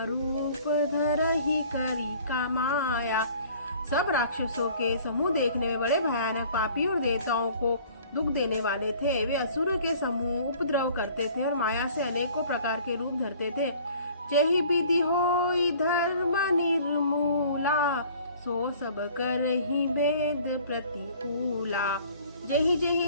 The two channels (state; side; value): inverted; both; correlation -0.51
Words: रूप धरही करी कमाया। सब राक्षसों के समूह देखने में बड़े भयानक, पापी और देवताओं को दुख देने वाले थे। वे असुरों के समूह उपद्रव करते थे और माया से अनेकों प्रकार के रूप धरते थे। जेहि विधि होई धर्म निर्मूला, सो सब करहि वेद प्रतिकूला। जेहि